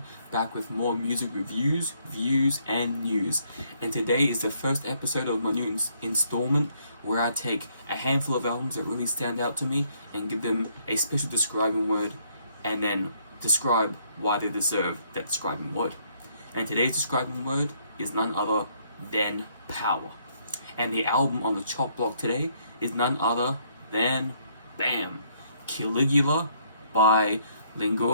back with more music reviews, views and news. And today is the first episode of my new installment where I take a handful of albums that really stand out to me and give them a special describing word and then describe why they deserve that describing word. And today's describing word is none other than power. And the album on the chop block today is none other than, bam, CALIGUA by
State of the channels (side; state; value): both; inverted; correlation -0.69